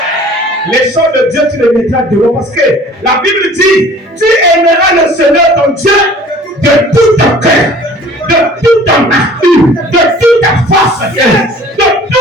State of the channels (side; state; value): both; normal; correlation 0.49